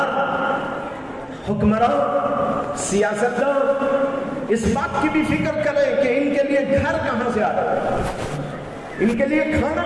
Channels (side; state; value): both; identical; correlation 1.00